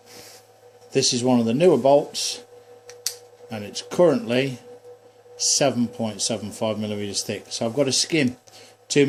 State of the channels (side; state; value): both; identical; correlation 1.00